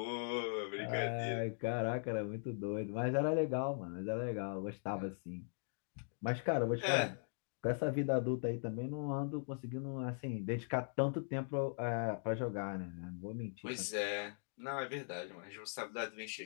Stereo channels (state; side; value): silent; right; digital silence